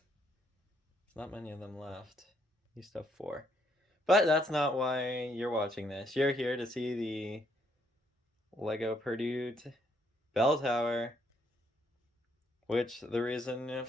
not many of them left. Used to have 4. But that's not why you're watching this. You're here to see the Lego Purdue bell tower, which the reason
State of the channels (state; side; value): normal; both; correlation 0.71